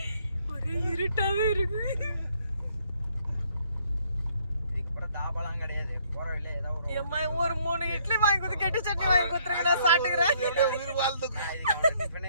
ஒரே இருட்டாவே இருக்கு. இதுக்கு அப்புறம் தாபாலாம் கிடையாது. போற வழியில ஏதாவது ஒரு 3 இட்லி வாங்கி கொடுத்து கெட்டி சட்னி வாங்கி கொடுத்துருங்க. நான் சாப்பிட்டுக்கிறேன். எப்படியே உயிர் வாழ்ந்து இதுக்கு அவன்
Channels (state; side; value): inverted; both; correlation -0.66